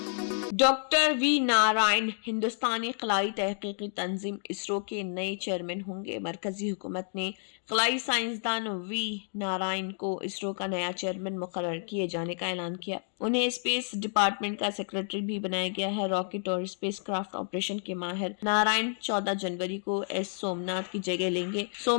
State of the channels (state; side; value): silent; right; 58 dB below the other